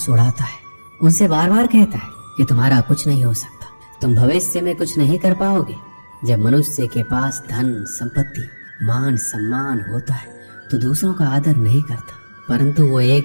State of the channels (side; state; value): both; inverted; correlation -1.00